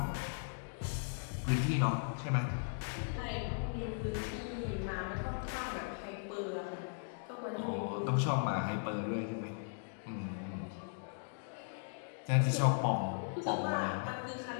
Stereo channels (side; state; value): right; silent; digital silence